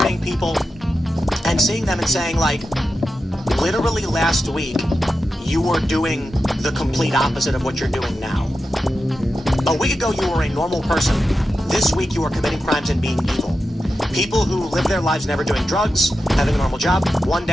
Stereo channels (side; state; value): both; normal; correlation 0.90